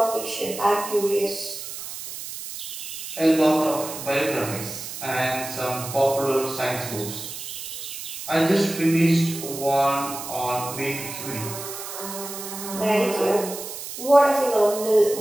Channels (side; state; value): right; noise; hiss, 9 dB below the sound